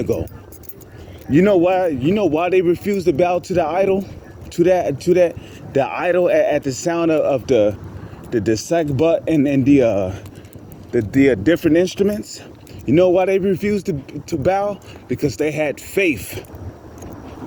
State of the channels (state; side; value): identical; both; correlation 1.00